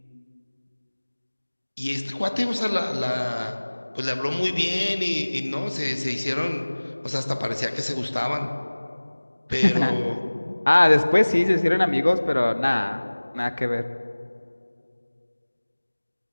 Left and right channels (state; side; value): inverted; both; correlation -1.00